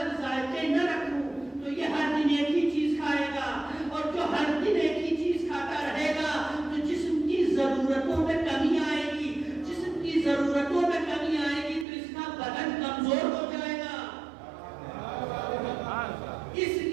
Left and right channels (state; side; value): drops out; left; at 11.9 s